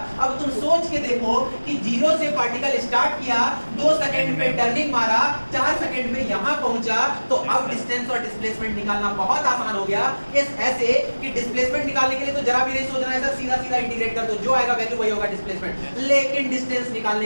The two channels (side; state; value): both; inverted; correlation -1.00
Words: अब तुम सोच के देखो कि 0 से पार्टिकल स्टार्ट किया, 2 सेकंड पे टर्निंग मारा, 4 सेकंड में यहां पहुंचा, तो अब डिस्टेंस और डिस्प्लेसमेंट निकालना बहुत आसान हो गया। इस ऐसे कि डिस्प्लेसमेंट निकालने के लिए तो जरा भी नहीं सोचना है सर, सीधा सीधा इंटीग्रेट कर दो, जो आएगा वैल्यू वही होगा डिस्प्लेसमेंट। लेकिन डिस्टेंस